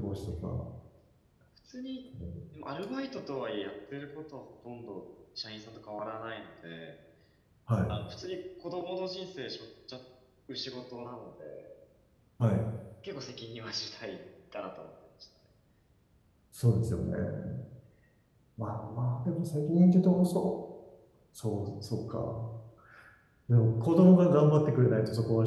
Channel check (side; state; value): both; identical; correlation 1.00